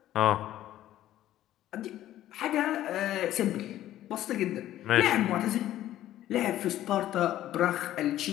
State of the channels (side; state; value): right; quieter; 13.2 dB